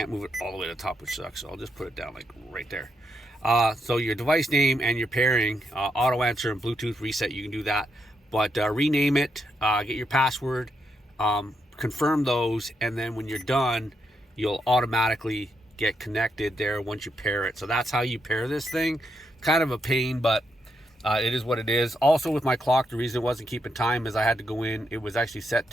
move it all the way to the top, which sucks, so I'll just put it down like right there. So your device name and your pairing, auto answer and Bluetooth reset, you can do that. But rename it, get your password, confirm those, and then when you're done, you'll automatically get connected there once you pair it. So that's how you pair this thing. Kind of a pain, but it is what it is. Also with my clock, the reason it wasn't keeping time is I had to go in. It was actually set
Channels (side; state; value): both; normal; correlation 0.80